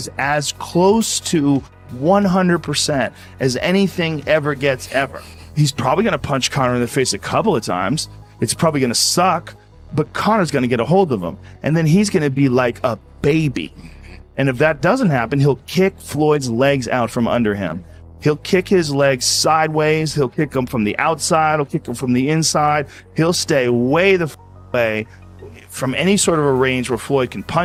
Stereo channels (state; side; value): identical; both; correlation 1.00